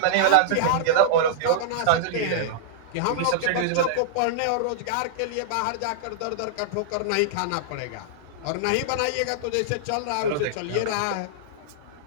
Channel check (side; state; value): both; different; correlation -0.02